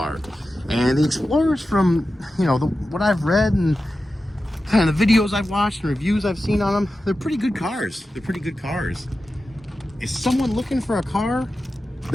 And the Explorers, from, you know, what I've read and kind of the videos I've watched and reviews I've seen on them, they're pretty good cars. They're pretty good cars. Is someone looking for a car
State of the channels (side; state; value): both; normal; correlation 0.93